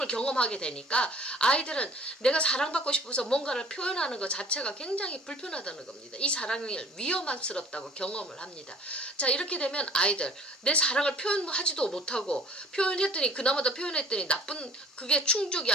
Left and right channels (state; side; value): normal; both; correlation 0.50